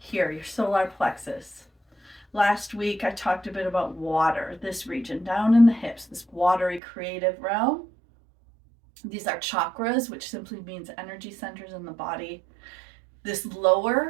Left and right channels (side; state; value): left; drops out; at 6.8 s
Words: your solar plexus. Last week, I talked a bit about water, this region down in the hips, this watery creative realm. These are chakras, which simply means energy centers in the body. This